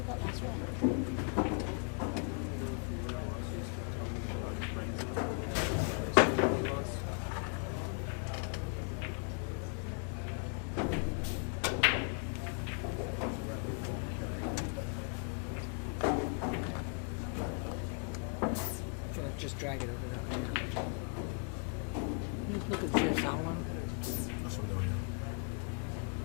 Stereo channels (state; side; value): quieter; right; 39.4 dB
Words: of that last round? Gonna just drag it over that way. Just look at the CSL one. That's what I'm doing, yeah.